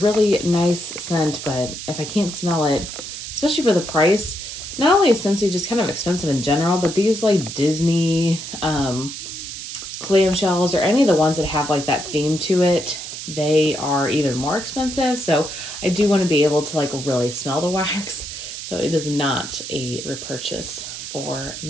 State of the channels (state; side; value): noise; right; hiss, 9 dB below the sound